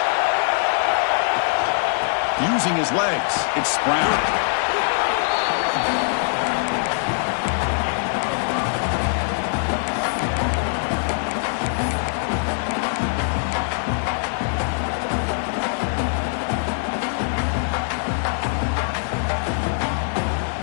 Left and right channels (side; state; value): right; silent; digital silence